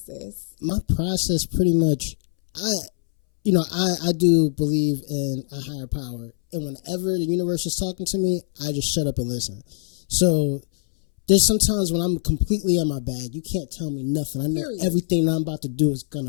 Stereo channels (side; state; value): right; silent; 63 dB below the other